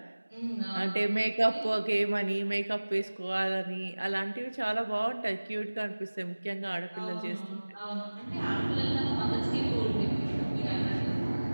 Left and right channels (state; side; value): inverted; both; correlation -1.00